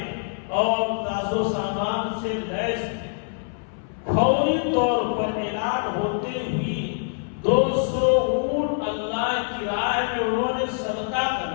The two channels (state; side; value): silent; right; 59 dB below the other